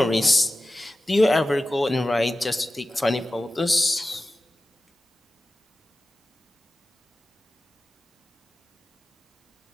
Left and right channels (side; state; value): both; normal; correlation 0.95